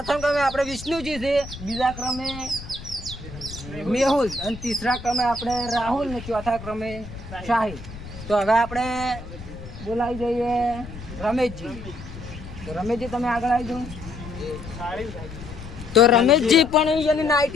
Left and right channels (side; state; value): left; noise; rumble, 13 dB below the sound